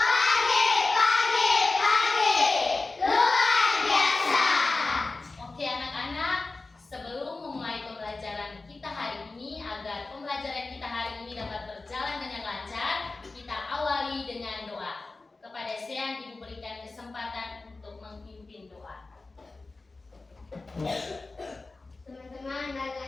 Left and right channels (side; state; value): right; quieter; 3.5 dB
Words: Pembelajaran kita hari ini dapat berjalan dengan lancar, kita awali dengan doa. Kepada Sean Ibu berikan kesempatan untuk memimpin doa. Teman-teman,